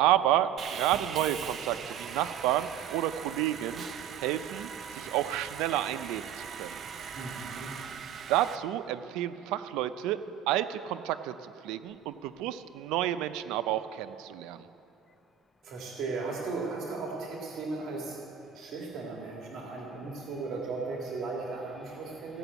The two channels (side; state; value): left; quieter; 9.9 dB